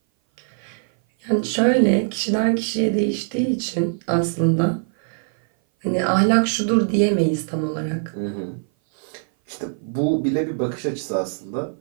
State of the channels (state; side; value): silent; left; 58 dB below the other